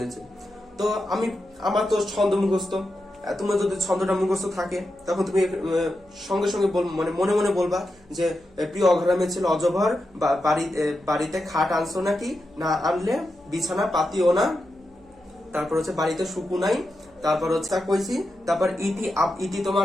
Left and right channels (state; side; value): noise; right; hum, 30 dB below the sound